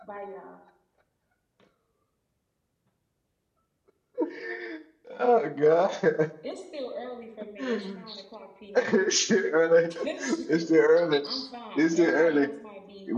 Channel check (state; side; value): identical; both; correlation 1.00